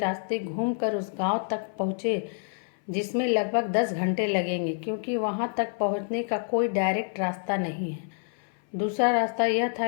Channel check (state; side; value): silent; right; 58 dB below the other